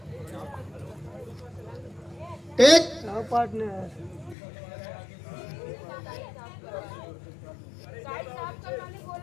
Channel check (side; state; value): right; drops out; at 4.4 s